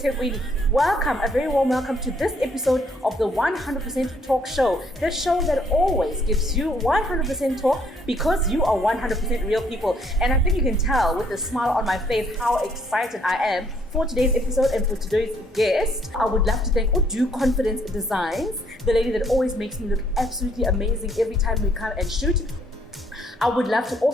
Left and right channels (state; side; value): normal; both; correlation 0.67